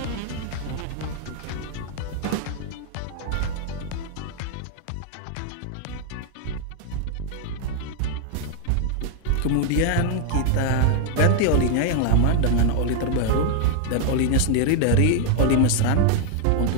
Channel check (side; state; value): both; different; correlation 0.01